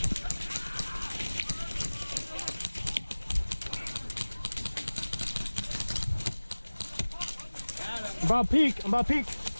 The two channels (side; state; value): both; inverted; correlation -1.00